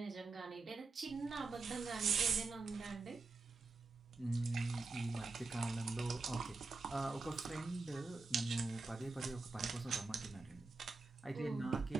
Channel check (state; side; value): quieter; left; 3.8 dB